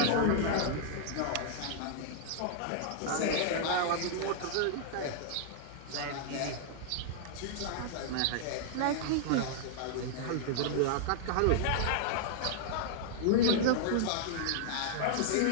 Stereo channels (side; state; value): both; different; correlation -0.01